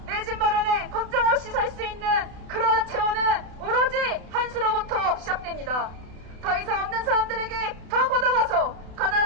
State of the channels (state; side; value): late; left; 32 ms